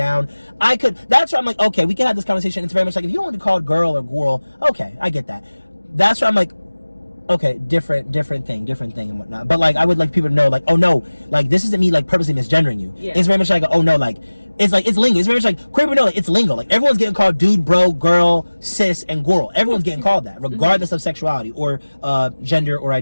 That's where I'm like, okay, we can have this conversation. It's very much like, if you want to be called girl or girl, okay, I get that. That's where I'm like, okay, different thing and whatnot. But like, I would like people to know, like, oh no, like this isn't me like purposely misgendering you. Yeah. It's very much like, oh no, like it's lingo. It's very much like queer people know, like, it's lingo. Like everyone's getting called dude, bro, girl, cis, and girl. Everyone's getting called that, regardless of sexuality or gender or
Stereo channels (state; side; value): inverted; both; correlation -1.00